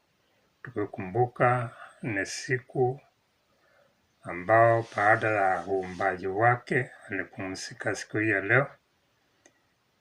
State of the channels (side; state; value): both; identical; correlation 1.00